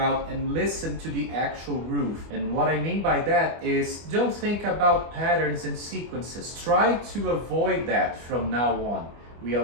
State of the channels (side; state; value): left; late; 24 ms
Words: and listen to the actual groove. And what I mean by that is, don't think about patterns and sequences. Try to avoid that from now on. We